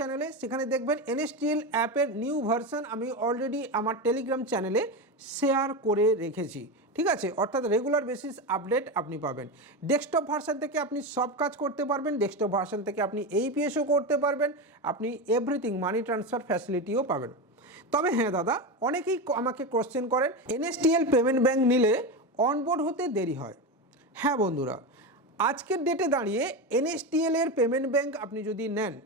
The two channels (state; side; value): normal; both; correlation 0.18